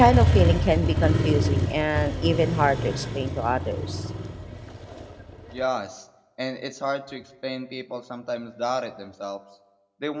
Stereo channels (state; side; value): identical; both; correlation 1.00